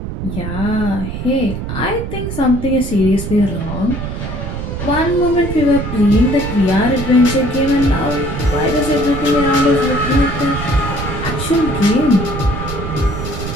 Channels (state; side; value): noise; right; rumble, 6 dB below the sound